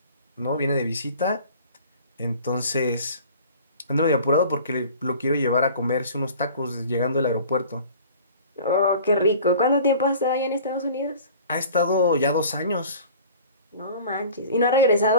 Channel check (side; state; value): both; inverted; correlation -0.45